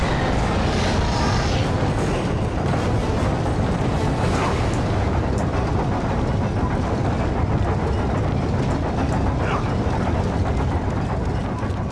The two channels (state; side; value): identical; both; correlation 1.00